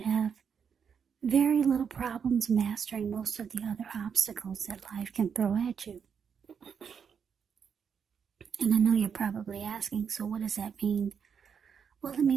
have very little problems mastering most of the other obstacles that life can throw at you. And I know you're probably asking, so what does that mean? Well, it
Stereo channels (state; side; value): quieter; left; 6.9 dB